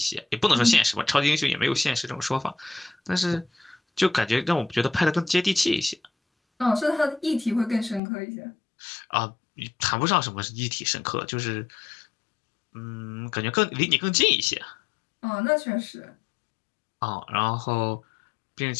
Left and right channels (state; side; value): drops out; right; at 8.0 s